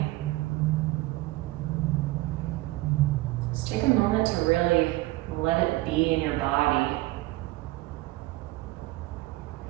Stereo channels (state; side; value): quieter; left; 19.2 dB